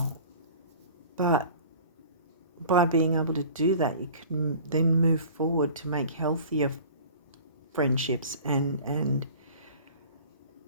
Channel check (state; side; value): inverted; both; correlation -0.43